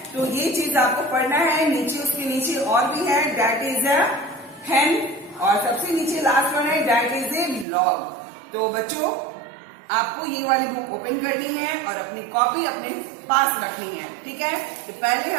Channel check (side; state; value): left; drops out; at 7.7 s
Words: तो ये चीज आपको पढ़ना है। नीचे उसके नीचे और भी है, डैट इज अ हेन और सबसे नीचे लास्ट वन है डैट इज ए लॉग। तो बच्चों आपको ये वाली बुक ओपन करनी है और अपनी कॉपी अपने पास रखनी है। ठीक है, तो पहले